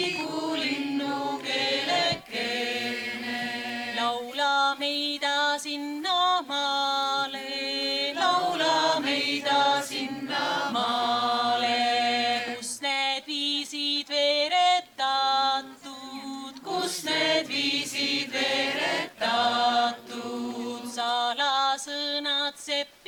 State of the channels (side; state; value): both; identical; correlation 1.00